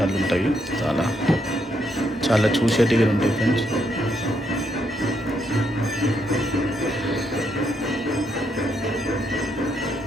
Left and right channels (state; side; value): normal; both; correlation 0.76